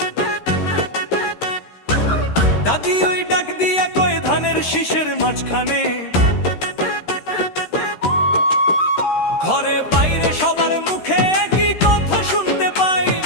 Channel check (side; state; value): right; late; 13 ms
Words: দাদি ওই ডাক দিয়া কয়ে ধানের শীষের মাঝখানে। ঘরে বাইরে সবার মুখে একই কথা শুনতে পাই,